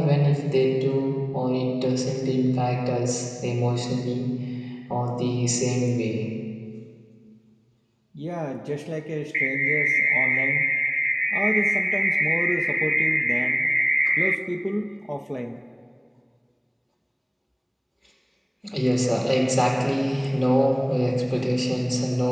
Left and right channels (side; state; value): both; identical; correlation 1.00